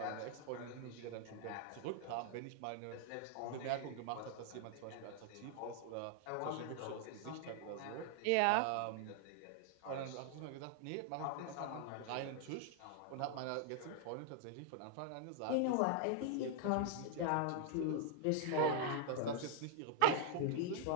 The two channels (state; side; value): different; both; correlation 0.00